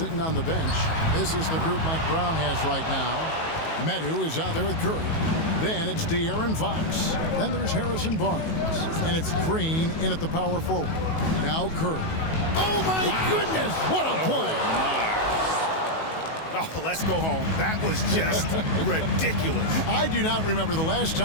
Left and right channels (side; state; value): right; late; 19 ms